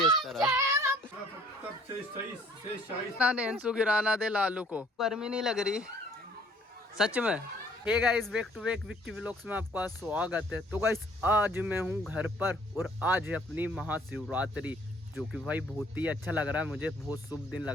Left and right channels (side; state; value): both; normal; correlation 0.58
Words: इस तरह। नेंसू गिराना दे लालू को, गर्मी नहीं लग रही सच में। Hey guys, back to back Vicky vlogs में आपका स्वागत है। तो गाइस आज मैं हूँ घर पर और आज है अपनी महाशिवरात्रि, जो कि भाई बहुत ही अच्छा लग रहा है मुझे, बहुत शुभ दिन